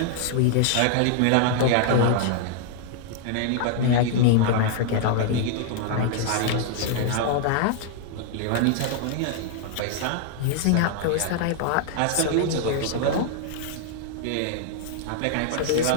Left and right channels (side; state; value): both; different; correlation 0.00